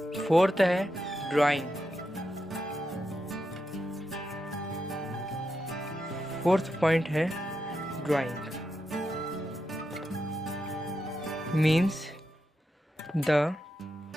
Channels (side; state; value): both; normal; correlation 0.86